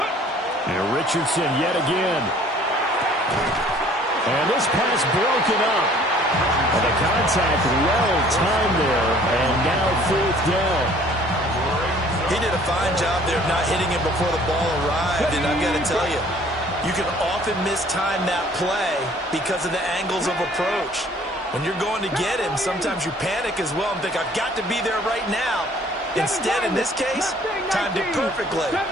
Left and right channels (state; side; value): normal; both; correlation 0.55